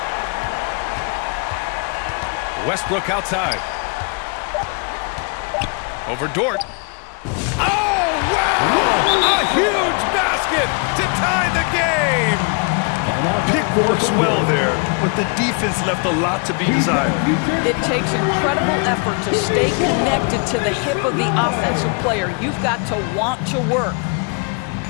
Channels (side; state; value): right; quieter; 36.1 dB